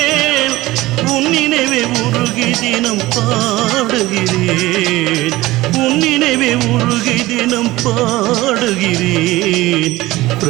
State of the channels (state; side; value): quieter; left; 18.3 dB